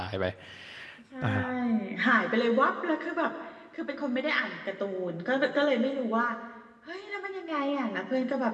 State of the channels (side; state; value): both; identical; correlation 1.00